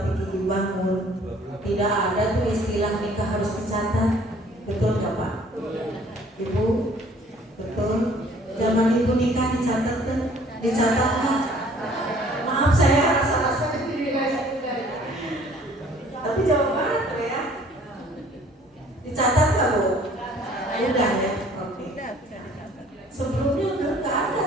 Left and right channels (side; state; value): both; normal; correlation 0.55